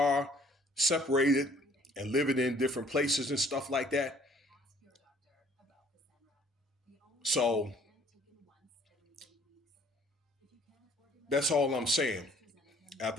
separated and living in different places and stuff like that. So that's all I'm saying. I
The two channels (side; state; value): both; normal; correlation 0.57